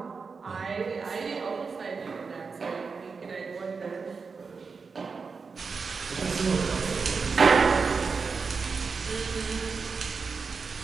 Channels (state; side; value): quieter; left; 5.0 dB